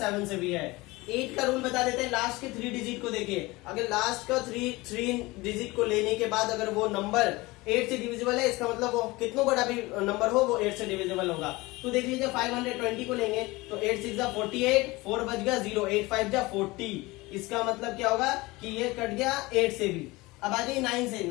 से भी है। 8 का रूल बता देते हैं, लास्ट के 3 डिजिट को देखिए, अगर लास्ट का 3 डिजिट को लेने के बाद अगर वो नंबर 8 से डिविजिबल है, इसका मतलब वो कितना बड़ा भी नंबर हो वो 8 से डिविजिबल होगा। तो देख लीजिए 520 को लेंगे तो 8 6 जा 48, 4 बच गया 0, 8 5 जा 40, इसका मतलब क्या होगा कि ये कट गया 8 से भी। अब आ जाइए 9 से।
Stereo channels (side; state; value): right; quieter; 21.8 dB